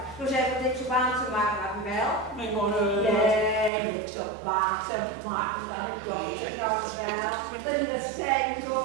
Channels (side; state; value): left; drops out; at 3.7 s